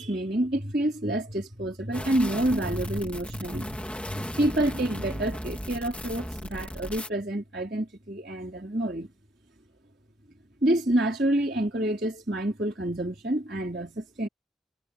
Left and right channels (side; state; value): both; normal; correlation 0.68